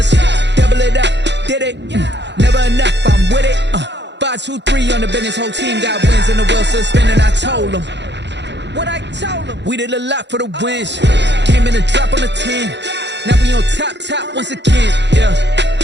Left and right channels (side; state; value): left; late; 0.51 ms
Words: double it up. Did it? Never enough, I'm with it. 5, 2, 3 on the business. Whole team got wins and the wheels still spinning. I told them what I told them. We did a lot for the wins. Came in a drop on the 10. Now we on top once again.